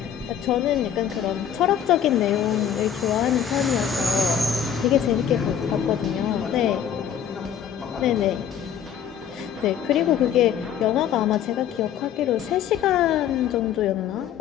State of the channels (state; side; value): quieter; right; 9.0 dB